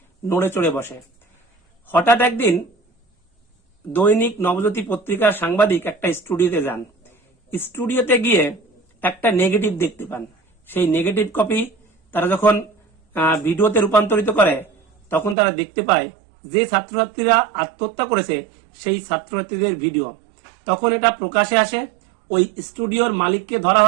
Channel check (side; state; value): left; drops out; at 15.4 s